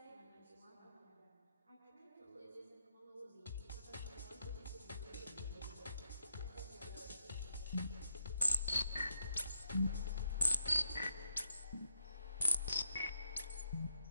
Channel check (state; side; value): inverted; both; correlation -0.77